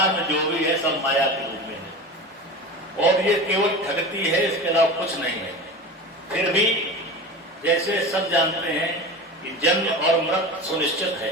में जो भी है सब माया के रूप में है और ये केवल ठगती है, इसके अलावा कुछ नहीं है। फिर भी जैसे सब जानते हैं कि जन्म और मृत्यु सुनिश्चित है,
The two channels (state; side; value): normal; both; correlation 0.31